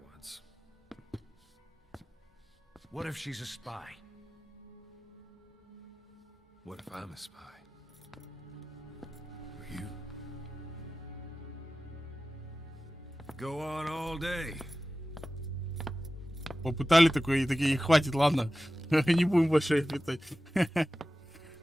once. What if she's a spy? What if I'm a spy? Or you? Go on all day. Попытали такое, и такие, хватит, ладно. Не будем больше их летать.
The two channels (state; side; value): normal; both; correlation 0.95